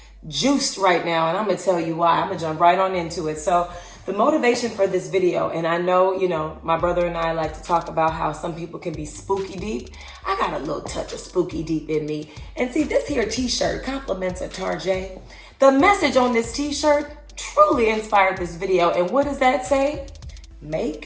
juiced right now, and I'm gonna tell you why. I'm gonna jump right on into it. So the motivation for this video, and I know, my brother and I like to talk about how some people can be spooky deep. I got a little touch of spooky deep in me. And see, this here t-shirt compliments a Tarjay. The message on this t-shirt truly inspired this video. And what does that say?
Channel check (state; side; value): identical; both; correlation 1.00